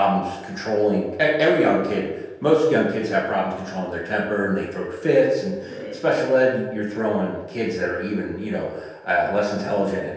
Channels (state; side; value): identical; both; correlation 1.00